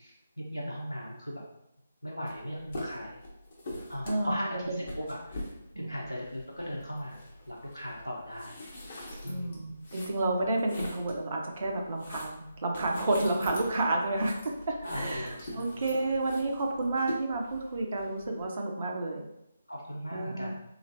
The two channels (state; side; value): inverted; both; correlation -0.83